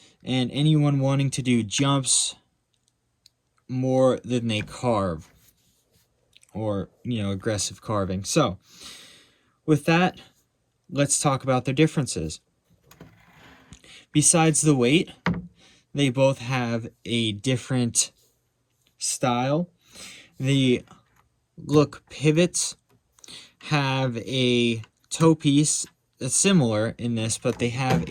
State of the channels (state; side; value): identical; both; correlation 1.00